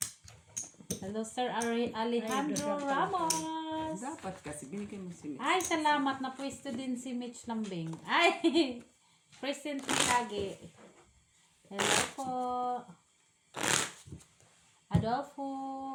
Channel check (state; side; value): identical; both; correlation 1.00